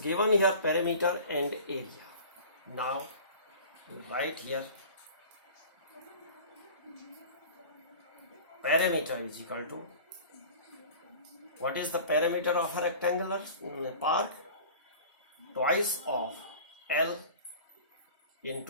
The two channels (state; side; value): inverted; both; correlation -0.41